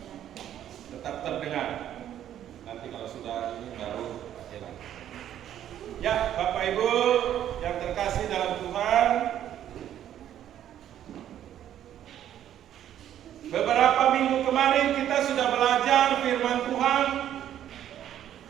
tetap terdengar. Nanti kalau sudah ini baru hilang. Ya, Bapak Ibu yang terkasih dalam Tuhan, beberapa minggu kemarin kita sudah belajar firman Tuhan,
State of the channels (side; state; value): left; quieter; 11.0 dB